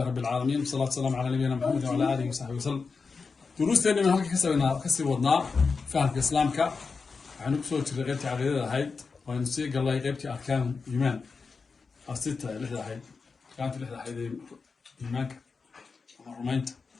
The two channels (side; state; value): right; quieter; 4.8 dB